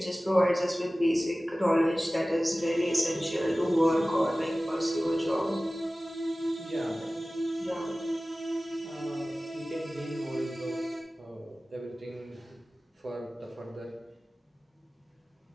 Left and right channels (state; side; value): normal; both; correlation 0.97